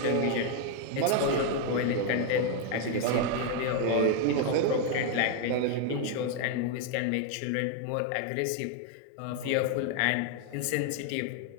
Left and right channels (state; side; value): different; both; correlation 0.01